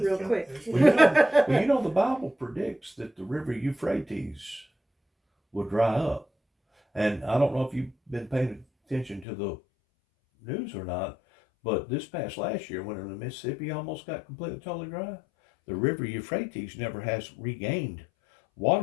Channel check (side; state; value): right; drops out; at 9.2 s